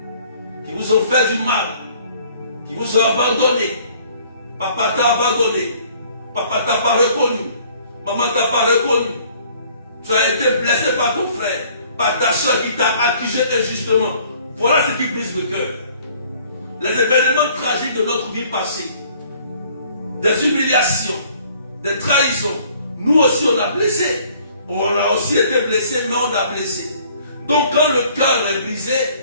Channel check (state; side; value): inverted; both; correlation -0.58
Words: qui vous ont fait du mal, qui vous ont abandonné. Papa t'a abandonné, papa t'a pas reconnu, maman t'a pas reconnu. Tu as été blessé par ton frère, par ta soeur qui t'a accusé injustement. Voilà ce qui brise le cœur. les événements tragiques de notre vie passée, des humiliations, des trahisons, nous aussi on a blessé. On a aussi été blessé, mais on a blessé. Donc quand le cœur est brisé,